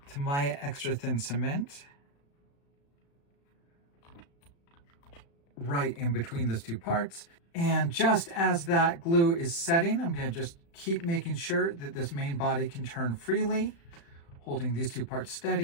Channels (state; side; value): late; right; 35 ms